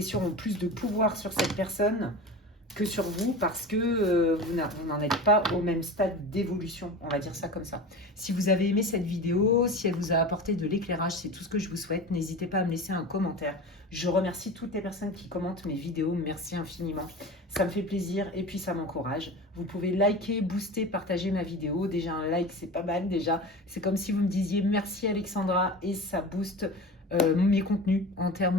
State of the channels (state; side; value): normal; both; correlation 0.31